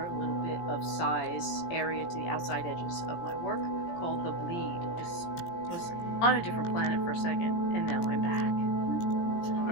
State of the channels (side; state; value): right; late; 17 ms